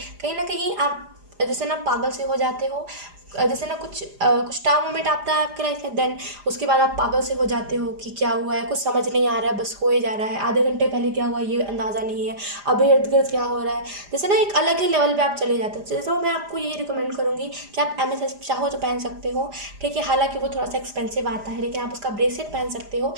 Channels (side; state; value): left; late; 4.9 ms